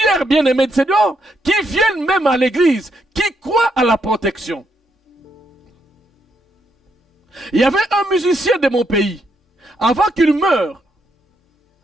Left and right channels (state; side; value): normal; both; correlation 0.77